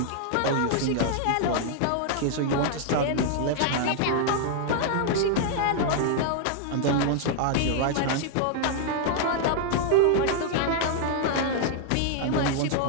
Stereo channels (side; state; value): both; different; correlation 0.00